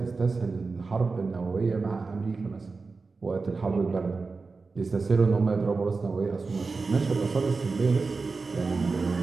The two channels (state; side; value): quieter; left; 4.2 dB